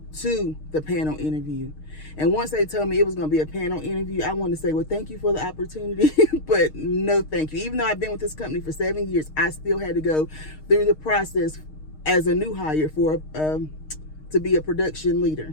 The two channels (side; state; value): right; late; 6.5 ms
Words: to the panel interview. And once they told me it was going to be a panel interview, I wanted to say, well, thank you for the opportunity, but no thank you. Even though I've been with this company for 7 years, I still had to go through the process as a new hire to be a production